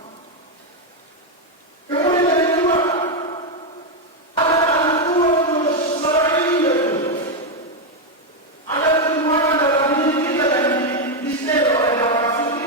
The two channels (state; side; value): normal; both; correlation 0.04